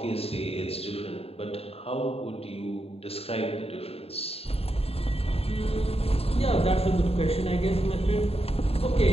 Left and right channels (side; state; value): right; late; 0.29 ms